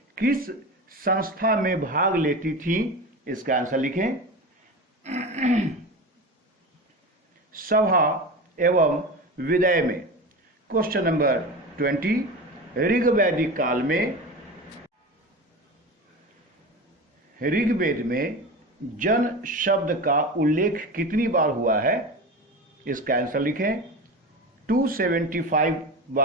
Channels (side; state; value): both; normal; correlation 0.28